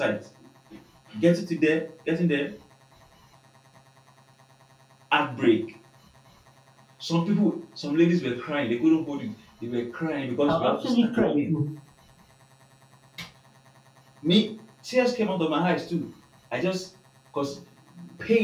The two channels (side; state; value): both; identical; correlation 1.00